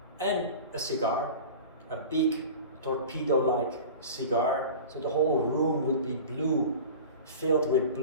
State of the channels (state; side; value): inverted; both; correlation -0.36